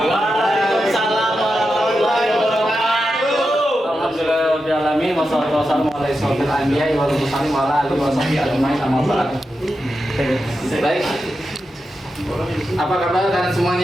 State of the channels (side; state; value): both; normal; correlation 0.89